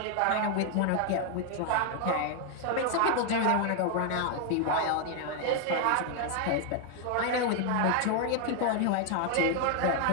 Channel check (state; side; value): different; both; correlation 0.00